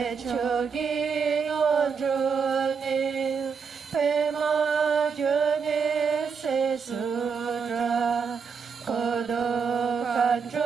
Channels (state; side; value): quieter; left; 5.8 dB